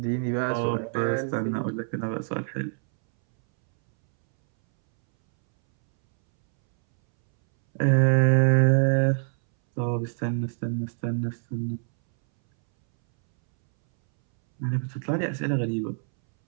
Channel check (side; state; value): left; silent; 62 dB below the other